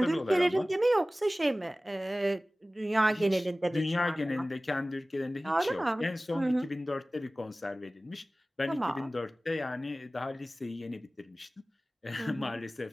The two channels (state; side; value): normal; both; correlation 0.97